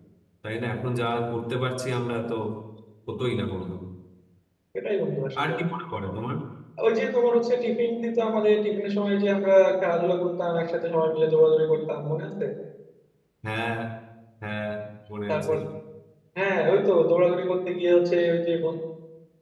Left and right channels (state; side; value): identical; both; correlation 1.00